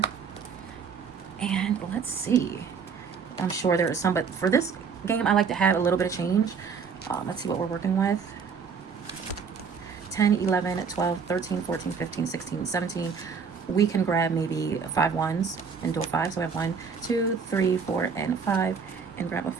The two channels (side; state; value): left; quieter; 5.9 dB